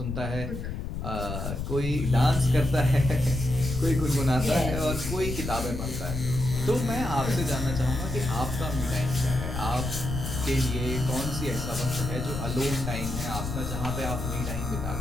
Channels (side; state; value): left; noise; rumble, 5 dB below the sound